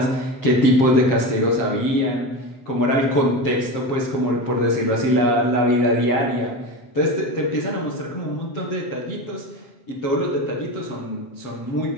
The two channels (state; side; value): late; right; 7.4 ms